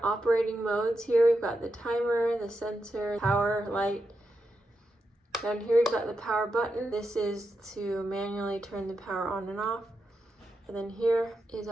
operating modes here. We've got the timer, the sensor, power, light. Down here we've got the power button. This is to manually turn the power on and off. And then here is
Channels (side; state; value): both; normal; correlation 0.86